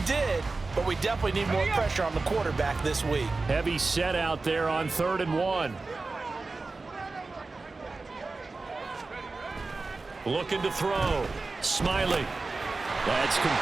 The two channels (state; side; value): quieter; left; 3.7 dB